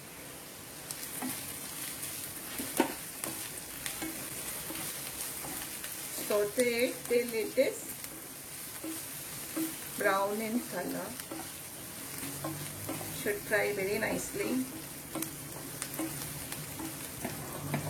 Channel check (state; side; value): identical; both; correlation 1.00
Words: Saute it till it is brown in color. Should fry very nicely.